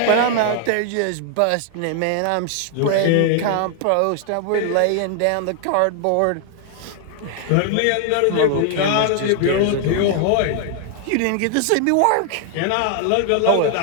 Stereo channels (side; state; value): both; different; correlation 0.00